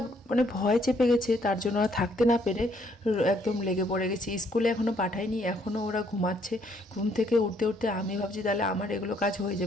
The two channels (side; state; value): both; normal; correlation 0.68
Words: মানে ভয় চেপে গেছে, তার জন্য আর থাকতে না পেরে একদম লেগে পড়ে গেছি। স্কুলে এখনও পাঠাইনি, এখনও ওরা ঘুমাচ্ছে। ঘুম থেকে উঠতে উঠতে আমি ভাবছি তাহলে আমার এগুলো কাজ হয়ে